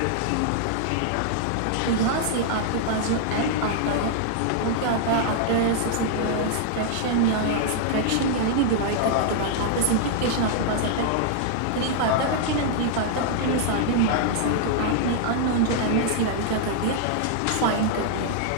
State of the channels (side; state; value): both; different; correlation -0.01